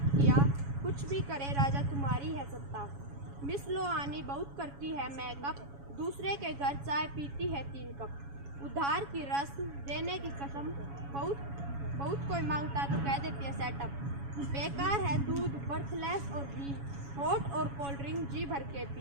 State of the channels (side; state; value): left; late; 7.2 ms